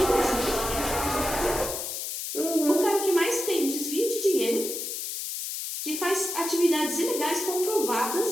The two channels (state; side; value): noise; left; hiss, 5 dB below the sound